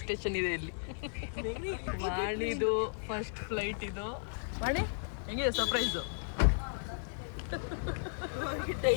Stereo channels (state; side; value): silent; right; digital silence